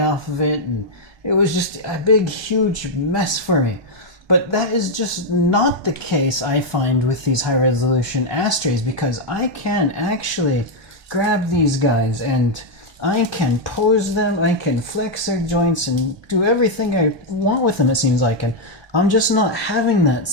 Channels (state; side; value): late; left; 1.2 ms